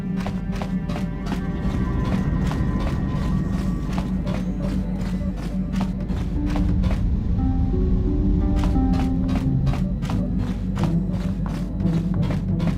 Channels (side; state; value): both; identical; correlation 1.00